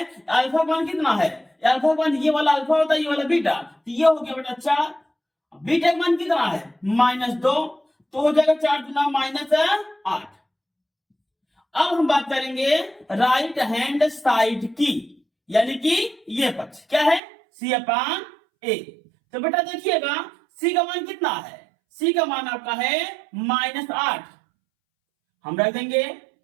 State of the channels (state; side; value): drops out; left; at 17.2 s